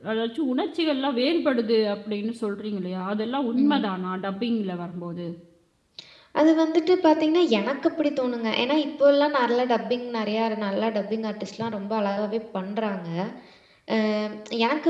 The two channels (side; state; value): both; identical; correlation 1.00